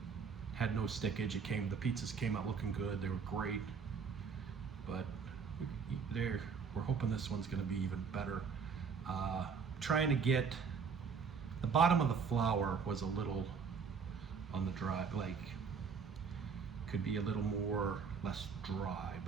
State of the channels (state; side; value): quieter; left; 5.9 dB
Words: had no stickage. The pizzas came out looking good. They were great, but we're hoping this one's going to be even better. Trying to get the bottom of the flour was a little on the dry, like could be a little less dry,